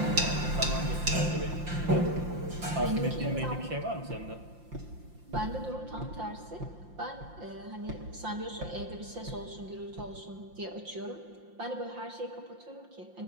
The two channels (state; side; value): late; left; 5.7 ms